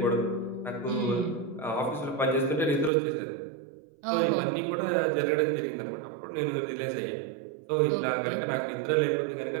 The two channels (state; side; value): drops out; left; at 2.9 s